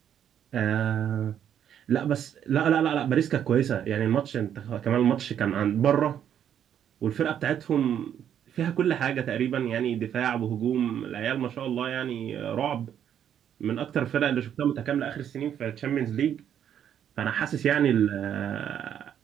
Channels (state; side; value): quieter; left; 9.4 dB